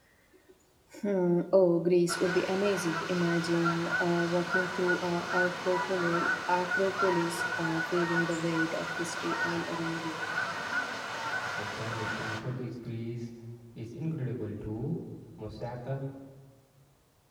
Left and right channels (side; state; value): both; identical; correlation 1.00